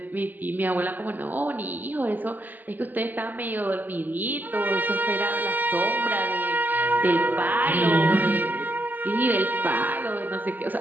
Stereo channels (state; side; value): late; left; 0.085 ms